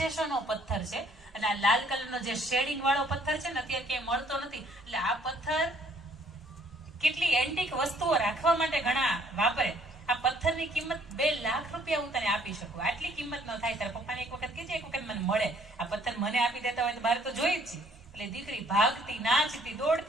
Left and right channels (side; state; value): both; normal; correlation 0.62